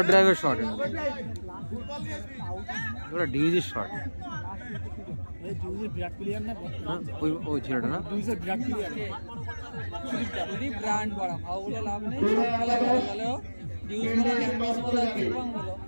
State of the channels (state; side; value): inverted; both; correlation -1.00